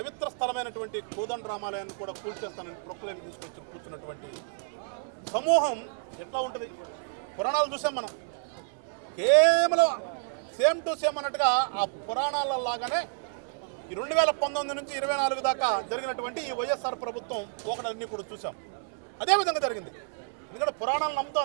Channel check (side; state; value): left; silent; 58 dB below the other